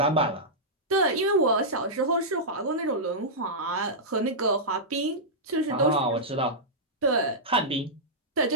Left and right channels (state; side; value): normal; both; correlation -0.11